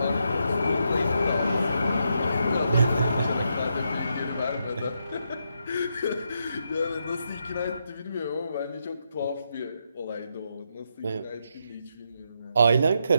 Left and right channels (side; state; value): both; inverted; correlation -0.81